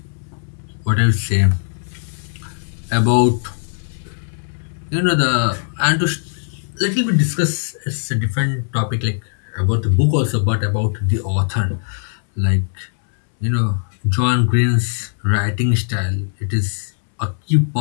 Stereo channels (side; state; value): right; silent; 66 dB below the other